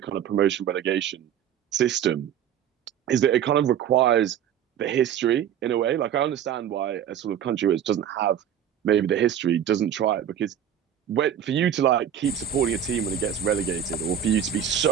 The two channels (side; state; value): left; quieter; 9.5 dB